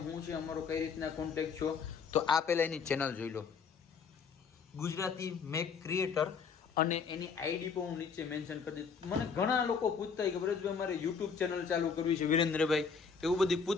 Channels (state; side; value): quieter; right; 5.8 dB